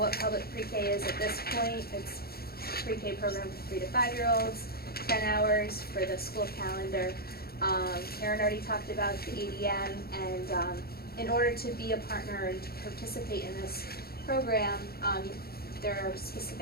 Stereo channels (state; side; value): late; right; 0.45 ms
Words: public pre-K is at this point. It's a pre-K program for 3 to 5-year-olds, 10 hours for the school calendar. Karen already talked about the ADM, and in order to be a partner and to participate in this program, there are